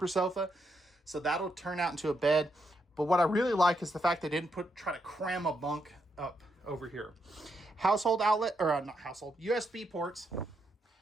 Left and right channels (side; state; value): both; normal; correlation 0.80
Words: sofa, so that'll turn out into a bed. But what I really like is the fact they didn't try to cram a bunk up over here. Household outlet, or not household, USB ports.